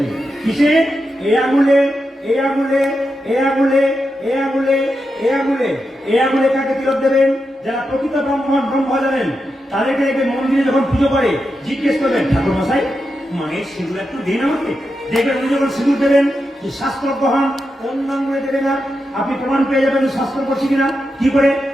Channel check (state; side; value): normal; both; correlation 0.87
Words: কিসে? এই আঙুলে, এই আঙুলে, এই আঙুলে, এই আঙুলে, এই আঙুলে। এই আঙুলে কাকে তিলক দেবেন? যারা প্রকৃত ব্রহ্ম জানেন, তাদেরকে দেখবেন মন্দিরে যখন পুজো করে জিজ্ঞেস করবেন, ঠাকুর মশাই মায়ের সিঁদুর একটু দিন আমাকে। দেখবেন উনি যখন সিঁদুর দেবেন, যে শাস্ত্র গ্রহণ অন্য আঙুলে দেবে না, আপনি প্রমাণ পেয়ে যাবেন শাস্ত্র করছি কিনা। কি করে?